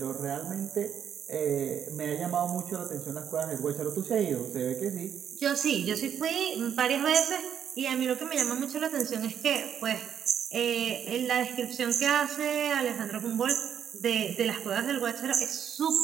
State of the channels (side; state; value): left; quieter; 8.7 dB